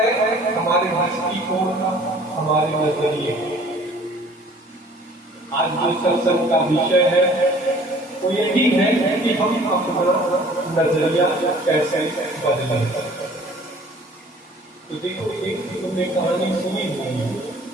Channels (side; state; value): both; normal; correlation 0.51